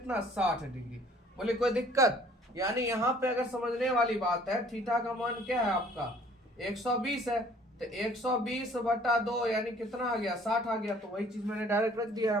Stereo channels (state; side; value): normal; both; correlation 0.55